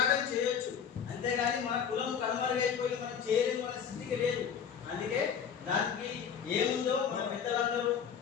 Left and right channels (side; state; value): right; quieter; 7.5 dB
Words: చేయొచ్చు. అంతేగాని మన కులం కనుమరుగైపోయి మనం చేయలేము, మన స్థితికి లేదు. అందుకే దానికి ఏముందో మన పెద్దలందరూ